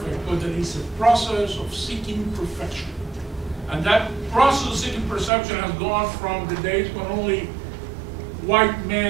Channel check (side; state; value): left; drops out; at 5.3 s